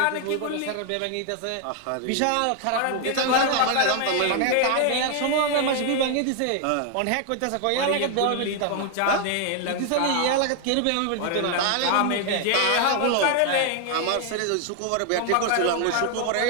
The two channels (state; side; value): different; both; correlation 0.00